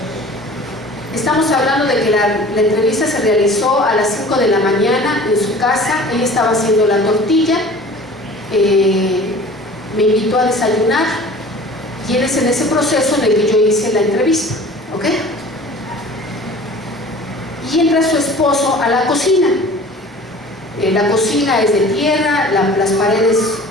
Estamos hablando de que la entrevista se realizó a las 5 de la mañana en su casa. Ella estaba haciendo la tortilla, me invitó a desayunar y es en ese proceso en el que yo hice la entrevista, ¿ok? Y entra su esposo a la cocina. La cocina es de tierra, las paredes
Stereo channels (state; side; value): normal; both; correlation 0.44